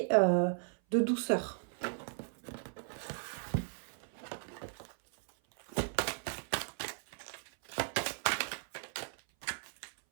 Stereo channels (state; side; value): silent; left; 53 dB below the other